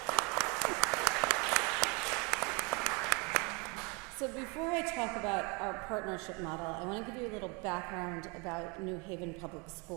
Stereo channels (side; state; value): left; quieter; 29.2 dB